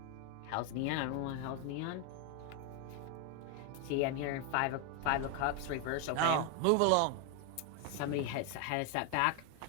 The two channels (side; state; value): both; different; correlation 0.01